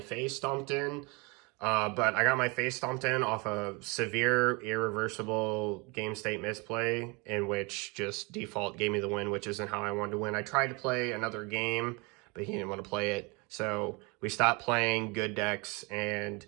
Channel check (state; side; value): quieter; left; 28.6 dB